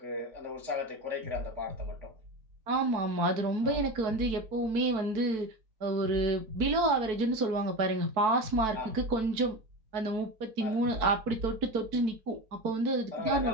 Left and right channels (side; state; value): left; late; 4.6 ms